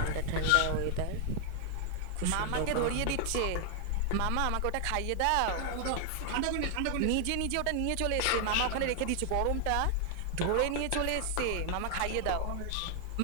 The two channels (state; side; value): different; both; correlation 0.00